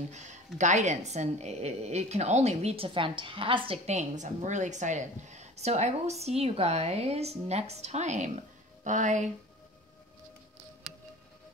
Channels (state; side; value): normal; both; correlation 0.41